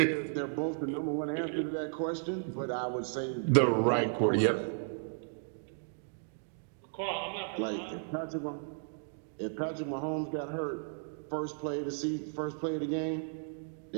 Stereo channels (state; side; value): silent; left; digital silence